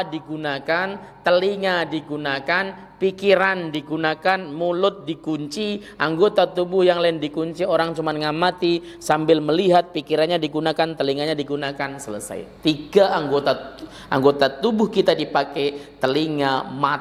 digunakan, telinga digunakan, pikiran digunakan, mulut dikunci, anggota tubuh yang lain dikunci, orang cuma ngamati sambil melihat, pikirannya digunakan, telinganya digunakan, selesai. 3 anggota tubuh kita dipakai, telinga,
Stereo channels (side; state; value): both; identical; correlation 1.00